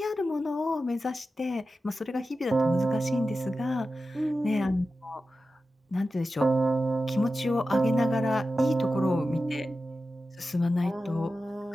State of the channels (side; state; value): both; normal; correlation 0.93